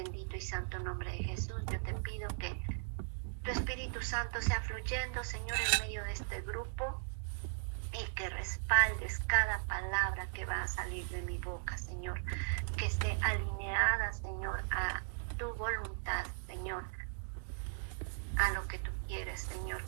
y santo nombre de Jesús, yo te pido que tu Espíritu Santo sea fluyendo, Señor, en medio de este grupo, y que respaldes cada palabra que va a salir de mi boca, Señor, que esté alineada, Señor, a tu voluntad, Señor, a lo que tú quieres, Señor,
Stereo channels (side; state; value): left; silent; digital silence